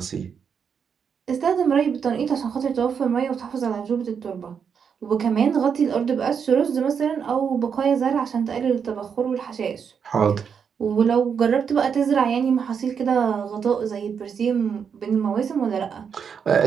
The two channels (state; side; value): quieter; left; 6.9 dB